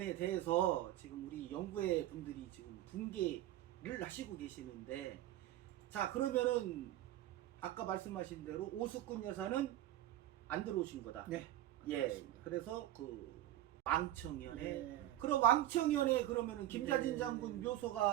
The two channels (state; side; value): quieter; left; 13.8 dB